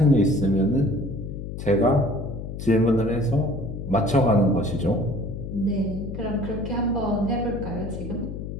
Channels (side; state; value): left; noise; hum, 7 dB below the sound